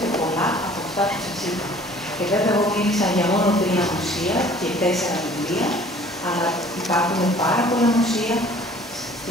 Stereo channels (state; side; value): normal; both; correlation 0.52